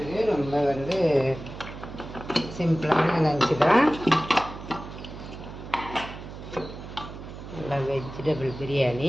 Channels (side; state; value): right; noise; hum, 12 dB below the sound